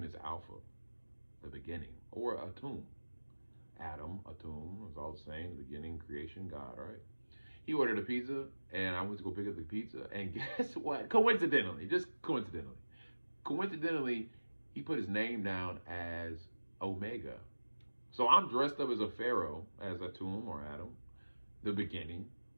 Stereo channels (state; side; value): inverted; both; correlation -1.00